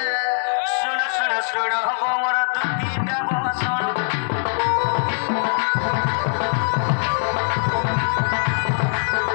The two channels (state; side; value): silent; right; digital silence